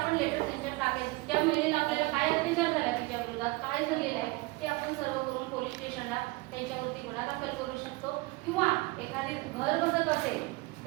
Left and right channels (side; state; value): left; quieter; 23.0 dB